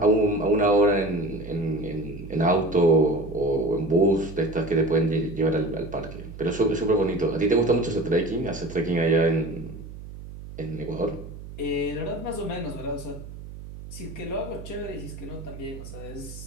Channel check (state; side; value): noise; right; hum, 13 dB below the sound